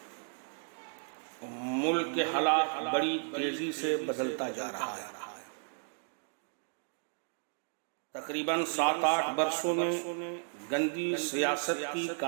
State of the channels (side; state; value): left; silent; digital silence